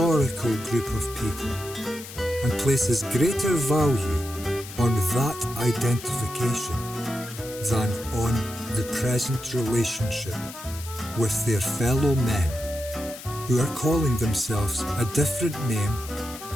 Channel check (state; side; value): noise; left; hiss, 13 dB below the sound